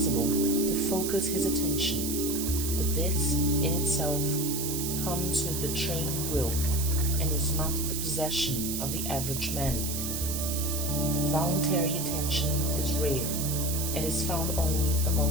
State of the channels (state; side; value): noise; right; hiss, 3 dB below the sound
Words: to focus his attention, but this in itself comes with the trained will and is not the possession of the average man. Voluntary attention is rare and is found only